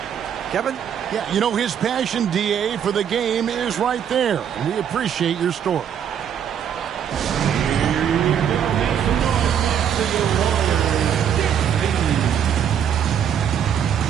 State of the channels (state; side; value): quieter; left; 8.7 dB